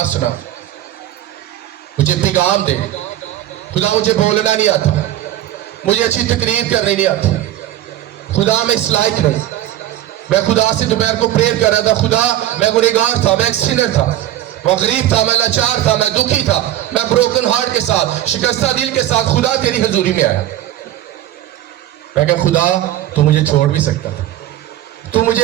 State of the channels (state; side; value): quieter; left; 13.1 dB